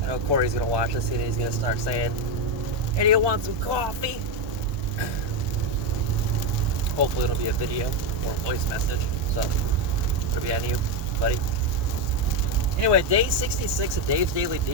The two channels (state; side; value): late; left; 1.1 ms